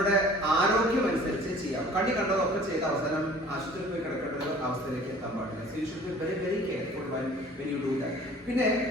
ആരോഗ്യം അനുസരിച്ച് ചെയ്യാം. കണ്ടതൊക്കെ ചെയ്ത അവസാനം ആശുപത്രിയിൽ പോയി കിടക്കേണ്ട അവസ്ഥയിലേക്ക് എത്താൻ പാടില്ല. So you should be very very careful when you do that. പിന്നെ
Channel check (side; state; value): both; normal; correlation 0.49